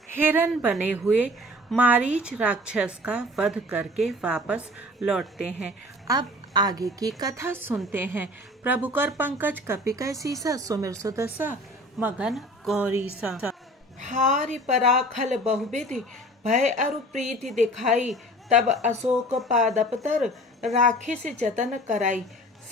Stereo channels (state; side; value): normal; both; correlation 0.45